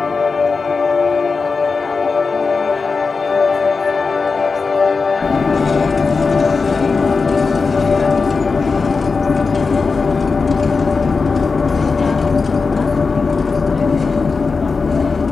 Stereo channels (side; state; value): right; quieter; 4.5 dB